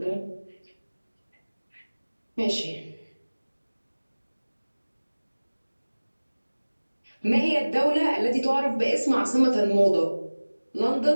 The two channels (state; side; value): inverted; both; correlation -1.00